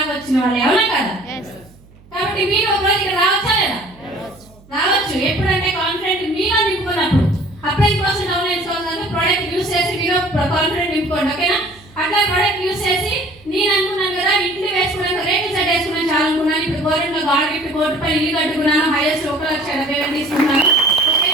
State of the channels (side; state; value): right; noise; hum, 26 dB below the sound